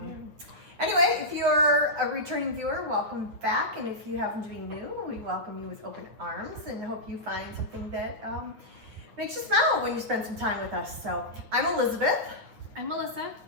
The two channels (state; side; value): late; left; 9.0 ms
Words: anyway, if you're a returning viewer, welcome back. And if you happen to be new, we welcome you with open arms and hope you find something that makes you smile when you spend some time with us. So I'm Elizabeth. I'm Melissa.